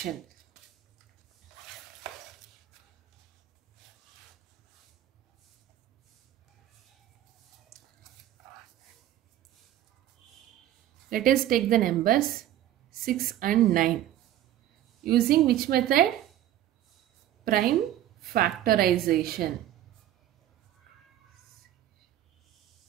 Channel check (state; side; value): quieter; left; 12.6 dB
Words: Let us take the numbers 6 and 9. Using which method? Prime factorization.